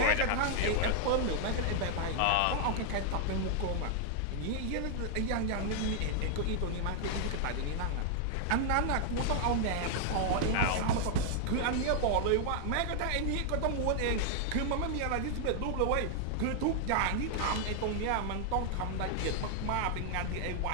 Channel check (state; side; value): different; both; correlation -0.01